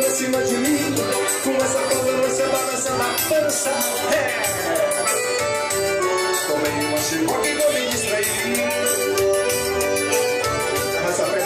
cima de mim. Com essa forma você balança na pança. Tomei uma chicote e vou me distrair. Essa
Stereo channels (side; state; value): both; identical; correlation 1.00